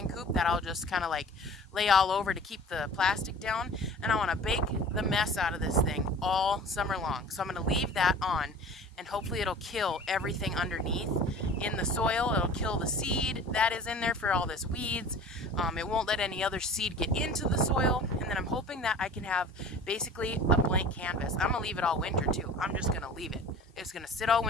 coop that I'll just kind of like lay all over to keep the plastic down. And I want to bake the mess out of this thing all summer long. So I'm going to leave that on, and hopefully it'll kill everything underneath in the soil. It'll kill the seed that is in there for all this weeds. It won't let any other seed get into the soil. And then I'm hoping that I can have basically a blank canvas. I'm going to leave it all winter too. I'm just going to leave it. It's going to sit all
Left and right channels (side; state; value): both; normal; correlation 0.42